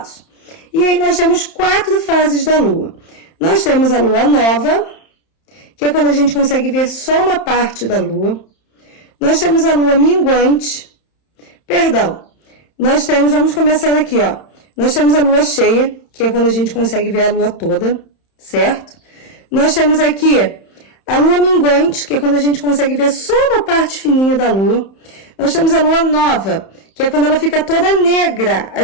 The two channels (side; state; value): right; late; 31 ms